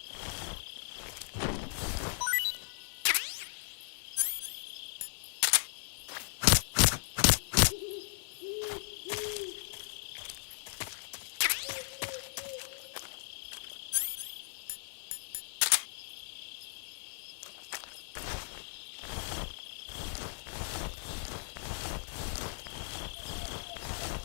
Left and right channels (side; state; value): right; silent; digital silence